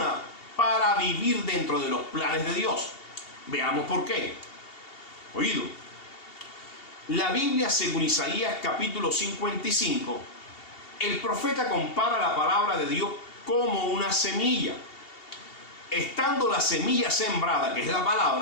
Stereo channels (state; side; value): late; right; 2.8 ms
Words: para vivir dentro de los planes de Dios. Veamos por qué. Oído. La Biblia, según Isaías capítulo 55, el profeta compara la palabra de Dios como una semilla. Estando la semilla sembrada, que es la